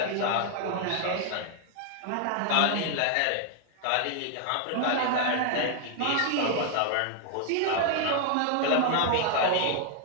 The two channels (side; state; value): both; different; correlation 0.00